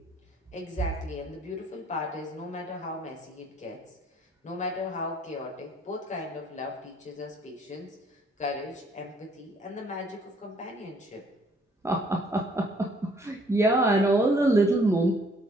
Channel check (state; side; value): normal; both; correlation 0.62